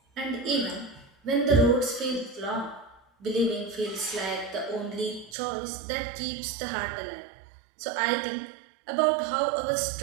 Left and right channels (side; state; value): left; drops out; at 5.4 s